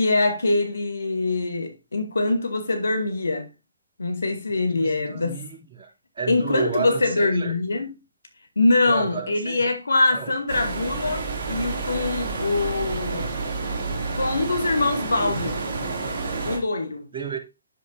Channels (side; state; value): both; inverted; correlation -0.83